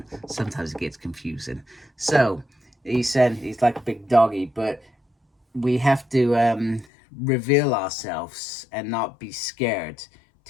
Sometimes it gets confusing. So he said he's like a big doggy, but we have to reveal ourselves and not be scared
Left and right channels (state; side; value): drops out; right; at 6.9 s